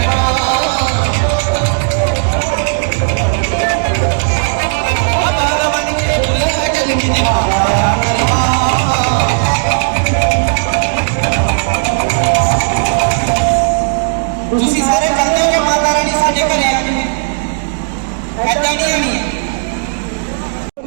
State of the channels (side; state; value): left; silent; digital silence